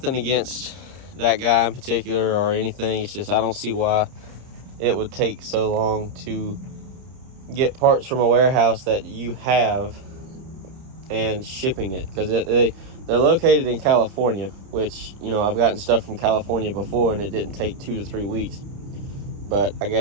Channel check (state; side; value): late; left; 30 ms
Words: against that guy in particular or anything. It's just I don't see why it would take so long to get parts from a warehouse that you have and shipping it, because they're located in California, which, you know, I've gotten stuff from California before and it didn't take 2 to 3 weeks. But I